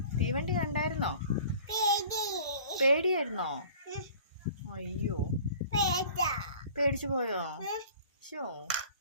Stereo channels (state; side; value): inverted; both; correlation -0.47